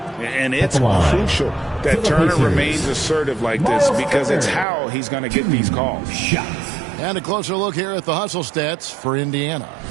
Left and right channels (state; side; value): drops out; left; at 4.7 s